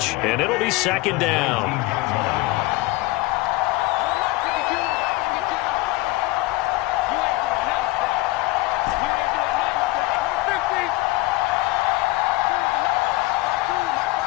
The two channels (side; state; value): right; quieter; 20.0 dB